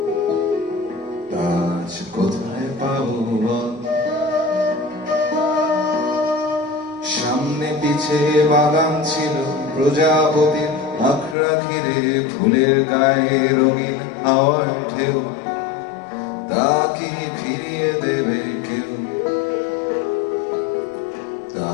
আজ কোথায় পাবো বল। সামনে পিছে বাগান ছিল প্রজাপতির, আখড়া ঘিরে ফুলের গায়ে রঙিন হাওয়ার ঢেউ। তা কি ফিরিয়ে দেবে কেউ, তা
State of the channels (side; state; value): right; drops out; at 11.4 s